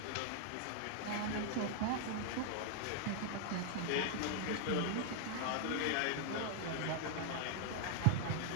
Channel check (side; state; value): both; different; correlation 0.00